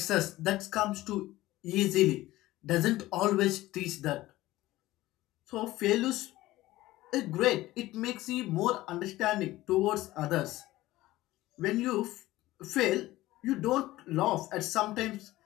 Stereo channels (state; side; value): quieter; right; 17.1 dB